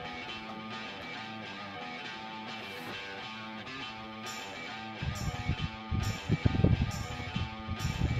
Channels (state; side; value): identical; both; correlation 1.00